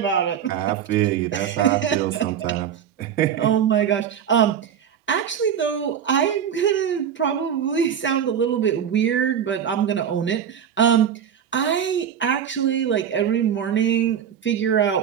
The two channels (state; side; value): quieter; left; 8.6 dB